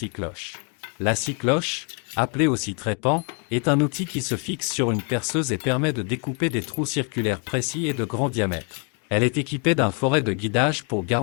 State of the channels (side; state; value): right; quieter; 37.8 dB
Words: La scie-cloche, appelée aussi trépan, est un outil qui se fixe sur une perceuse et permet de découper des trous circulaires précis et de grand diamètre. Elle est équipée d'un forêt de guidage pour